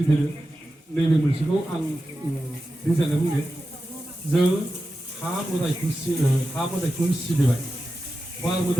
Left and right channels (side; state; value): both; normal; correlation 0.92